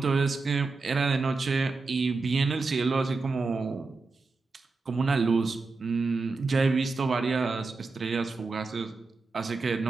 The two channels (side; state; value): left; quieter; 3.9 dB